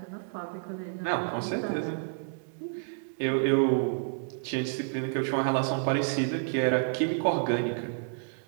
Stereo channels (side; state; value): left; silent; digital silence